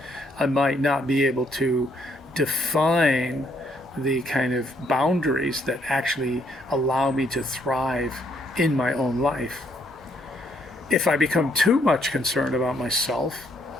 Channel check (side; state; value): both; normal; correlation 0.70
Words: I might not be able to define the kind of boundaries that actually allow me to thrive in my own life. If I become too much concerned about myself,